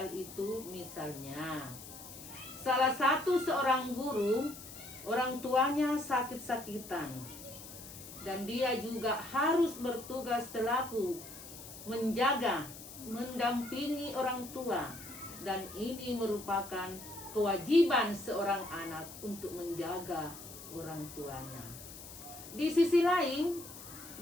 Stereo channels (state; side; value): noise; left; hiss, 14 dB below the sound